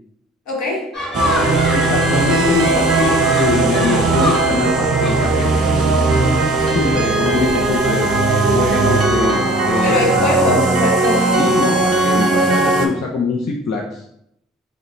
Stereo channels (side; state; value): both; normal; correlation 0.46